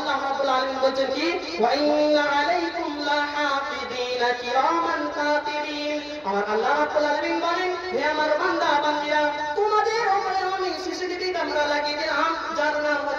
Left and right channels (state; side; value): identical; both; correlation 1.00